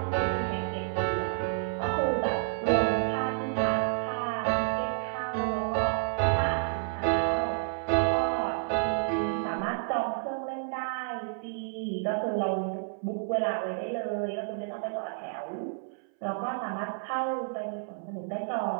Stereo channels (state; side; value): silent; left; 58 dB below the other